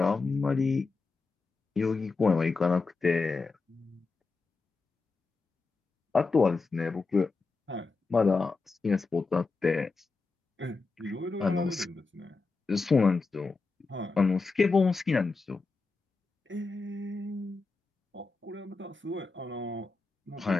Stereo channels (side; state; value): right; quieter; 4.1 dB